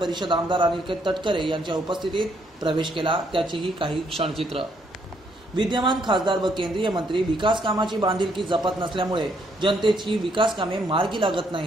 आमदार अनिकेत तटकरे यांच्या उपस्थितीत प्रवेश केला। त्याचीही काही क्षणचित्र। विद्यमान खासदार व केंद्रीय मंत्री विकास कामाची बांधिलकी जपत नसल्यामुळे जनतेची विकास कामे मार्गी लागत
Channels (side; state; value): both; normal; correlation 0.71